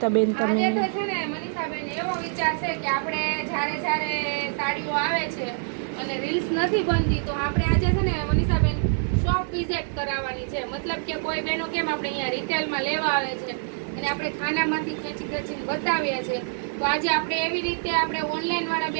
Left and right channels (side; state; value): left; silent; 61 dB below the other